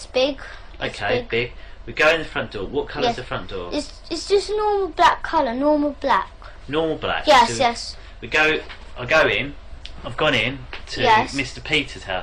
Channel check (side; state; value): both; identical; correlation 1.00